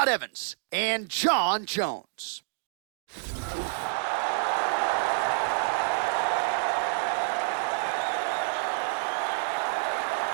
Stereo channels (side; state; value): left; silent; digital silence